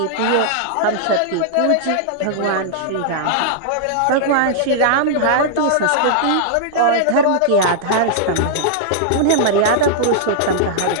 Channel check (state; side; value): different; both; correlation -0.01